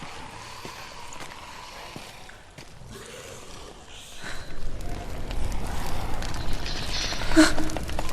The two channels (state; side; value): identical; both; correlation 1.00